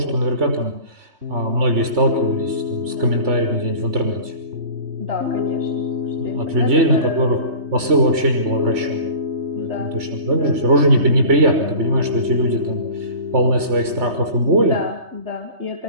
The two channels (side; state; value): left; late; 3.2 ms